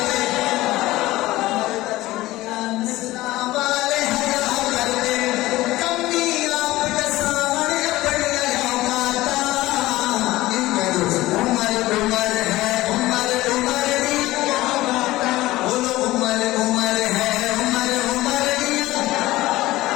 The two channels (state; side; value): quieter; right; 17.5 dB